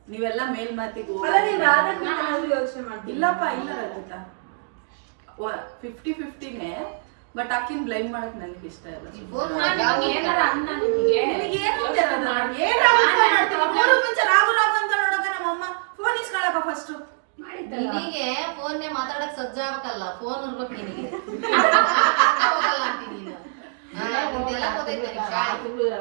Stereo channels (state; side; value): silent; left; digital silence